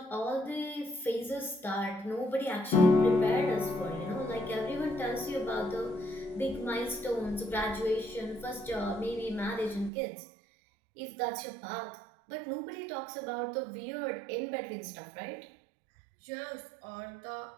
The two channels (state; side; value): drops out; left; at 9.9 s